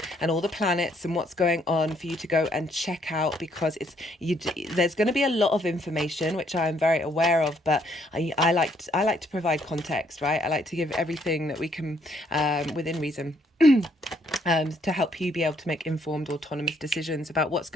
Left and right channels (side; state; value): both; normal; correlation 0.69